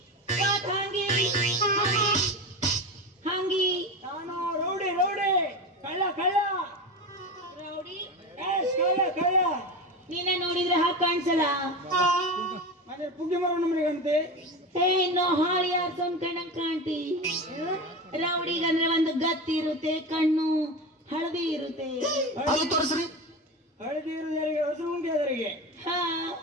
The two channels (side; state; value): both; normal; correlation 0.24